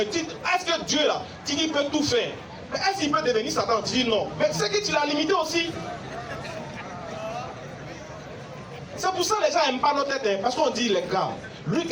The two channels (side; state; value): both; identical; correlation 1.00